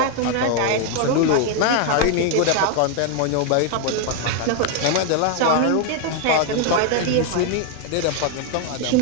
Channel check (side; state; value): both; different; correlation 0.00